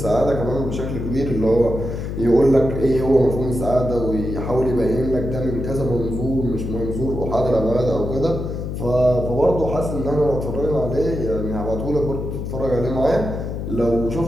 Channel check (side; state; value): left; noise; hum, 5 dB below the sound